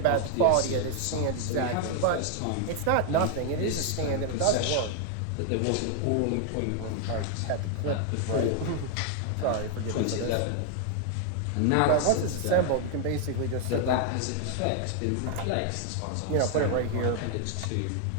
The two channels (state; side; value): different; both; correlation 0.00